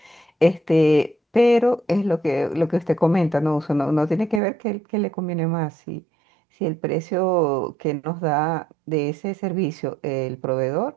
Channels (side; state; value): left; drops out; at 4.4 s